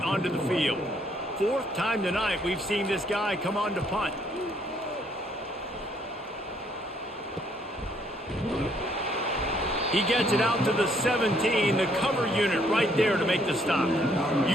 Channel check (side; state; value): both; normal; correlation 0.67